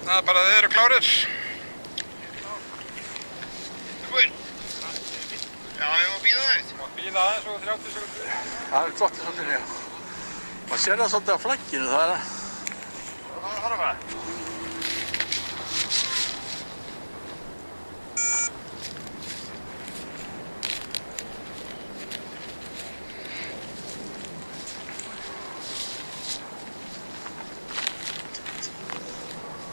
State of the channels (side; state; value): both; inverted; correlation -1.00